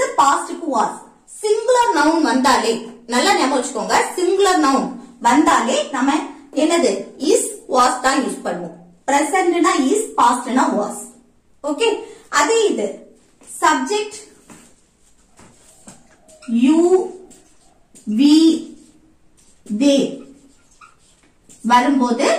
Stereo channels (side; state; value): both; identical; correlation 1.00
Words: பாஸ்ட்க்கு was. சிங்குலர் நவுன் வந்தாலே நல்லா ஞாபகம் வச்சுக்கோங்க, சிங்குலர் நவுன் வந்தாலே நம்ம என்னது is, was தான் யூஸ் பண்ணுவோம். பிரசன்ட்னா is, பாஸ்ட்னா was. ஓகே, அதே இது சப்ஜெக்ட் you, we, they வரும்போது